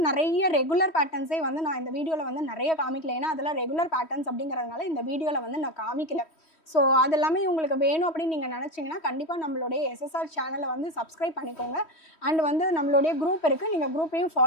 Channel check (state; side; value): late; right; 3.1 ms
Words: நிறைய ரெகுலர் பேட்டர்ன்ஸே வந்து நான் இந்த வீடியோவில் வந்து நிறைய காமிக்கல. ஏன்னா அதெல்லாம் ரெகுலர் பேட்டர்ன்ஸ் அப்படிங்கிறதுனால இந்த வீடியோவில் வந்து நான் காமிக்கல. ஸோ அதெல்லாமே உங்களுக்கு வேணும் அப்படின்னு நீங்கள் நினச்சிங்கன்னா கண்டிப்பாக நம்மளுடைய எஸ்எஸ்ஆர் சேனலை வந்து சப்ஸ்கிரைப் பண்ணிக்கோங்க. அண்ட் வந்து நம்மளுடைய குரூப் இருக்குது. நீங்கள் குரூப்பையும்